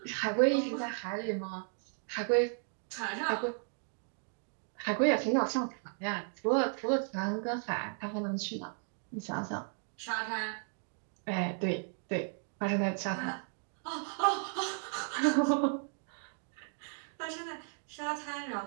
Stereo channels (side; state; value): left; silent; 54 dB below the other